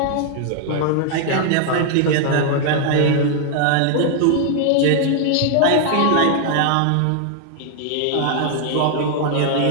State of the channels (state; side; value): different; both; correlation 0.00